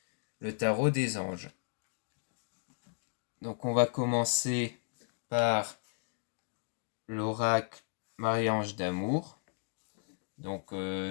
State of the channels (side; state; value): right; silent; digital silence